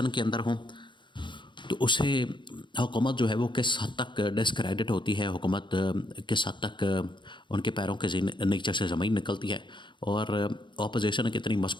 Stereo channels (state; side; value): late; right; 0.23 ms